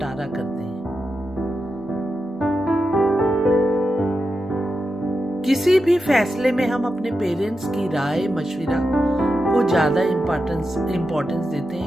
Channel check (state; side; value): normal; both; correlation 0.89